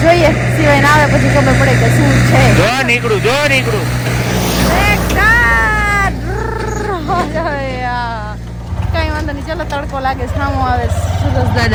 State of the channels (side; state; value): both; identical; correlation 1.00